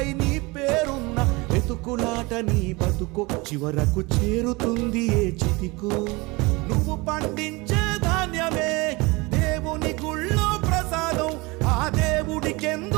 నీ పేరున్న వెతుకులాట నీ బతుకో చివరకు చేరుతుంది ఏ చితికో నువ్వు పండించే ధాన్యమే దేవుని గుళ్ళో ప్రసాదం ఆ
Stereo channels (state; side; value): quieter; left; 24.6 dB